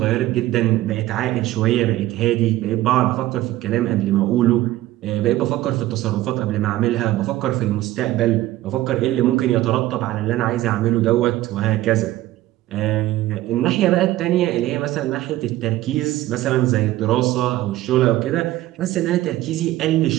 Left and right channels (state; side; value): quieter; left; 15.7 dB